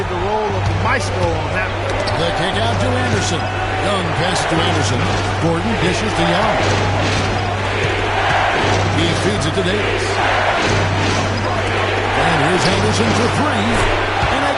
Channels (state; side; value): identical; both; correlation 1.00